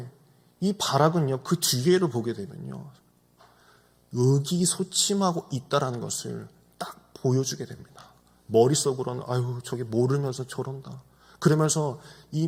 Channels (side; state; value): both; identical; correlation 1.00